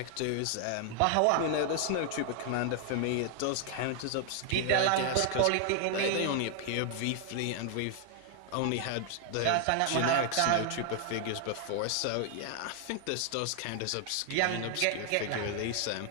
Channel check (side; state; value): both; different; correlation 0.00